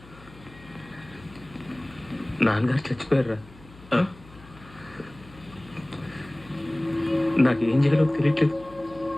నాన్నగారు చచ్చిపోయారా? నాకేం చేయాలో తెలియట్లేదు.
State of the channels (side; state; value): left; noise; hum, 22 dB below the sound